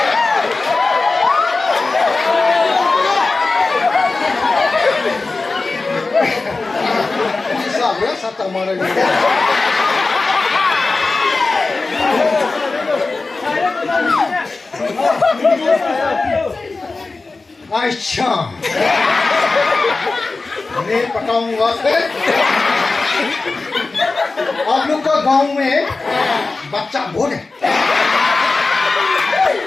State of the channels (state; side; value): quieter; right; 3.7 dB